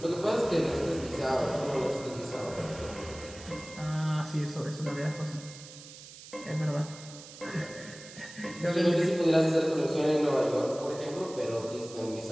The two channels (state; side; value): noise; right; hiss, 16 dB below the sound